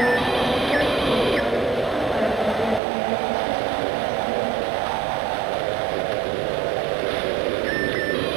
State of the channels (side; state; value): left; drops out; at 2.8 s